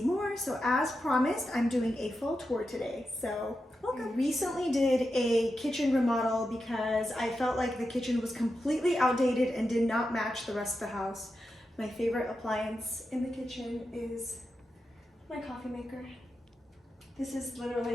more, so as promised, I'm doing a full tour today, so welcome. I recently did a kitchen remodel because I felt like the kitchen was completely outdated and did not match the rest of the house. My favorite appliance in the kitchen is my coffee maker. This is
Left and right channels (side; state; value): both; normal; correlation 0.89